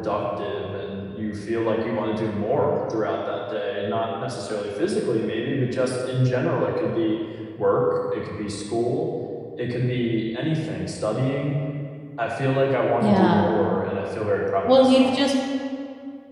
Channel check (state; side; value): identical; both; correlation 1.00